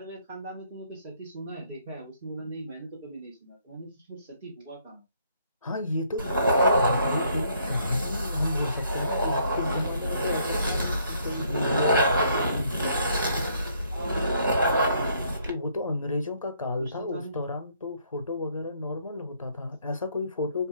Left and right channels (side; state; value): both; inverted; correlation -0.68